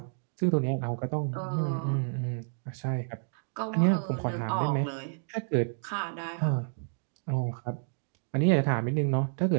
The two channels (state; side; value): silent; left; digital silence